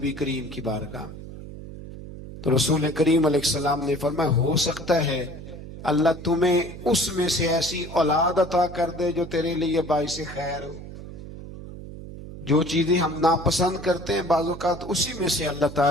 کریم کی بارگاہ، تو رسول کریم علیہ السلام نے فرمایا ہو سکتا ہے اللہ تمہیں اس میں سے ایسی اولاد عطا کر دے جو تیرے لیے باعث خیر ہو۔ جو چیزیں ہم ناپسند کرتے ہیں بعض اوقات اسی میں سے اللہ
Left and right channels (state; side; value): noise; right; hum, 12 dB below the sound